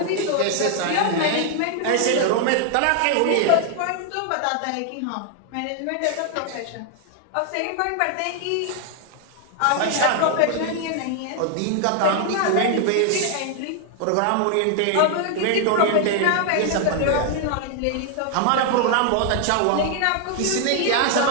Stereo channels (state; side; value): different; both; correlation 0.00